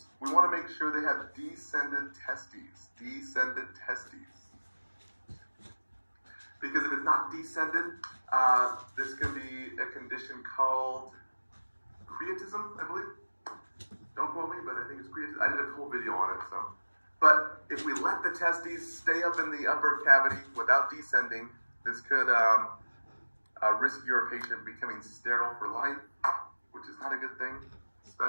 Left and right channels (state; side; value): inverted; both; correlation -1.00